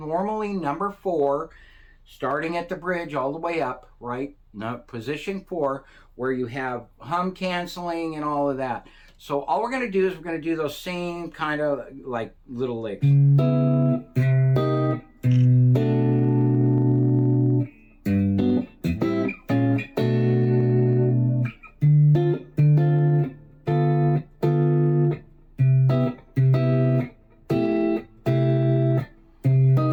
number 4, starting at the bridge all the way up, right? Now, position 4, where you have hum canceling and all of that. So all we're going to do is we're going to do those same kind of like little licks.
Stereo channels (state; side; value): identical; both; correlation 1.00